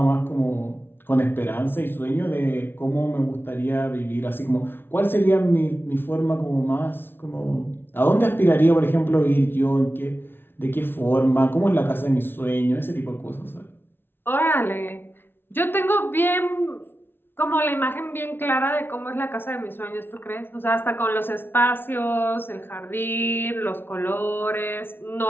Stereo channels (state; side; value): late; right; 0.11 ms